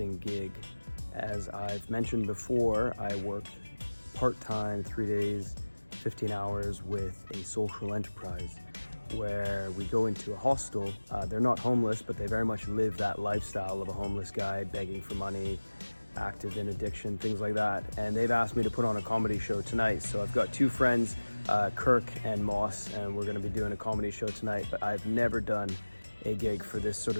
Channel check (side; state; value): both; inverted; correlation -1.00